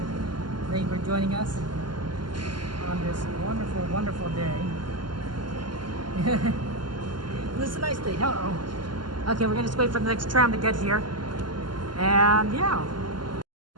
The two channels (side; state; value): left; late; 0.71 ms